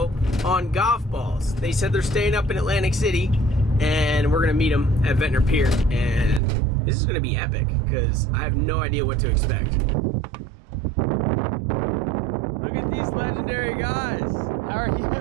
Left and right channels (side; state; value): left; drops out; at 6.4 s